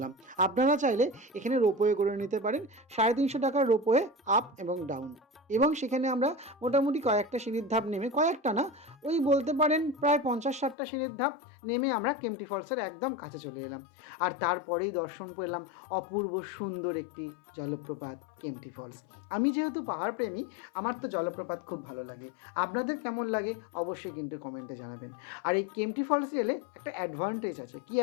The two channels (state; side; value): drops out; right; at 10.8 s